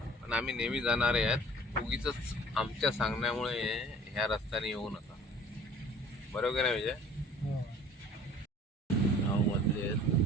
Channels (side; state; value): both; normal; correlation 0.49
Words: पण आम्ही नेहमी जाणारे आहेत, उगीच आमच्या सांगण्यामुळे ह्या रस्त्याने येऊ नका. बरोबर नाही विजय? गावमधले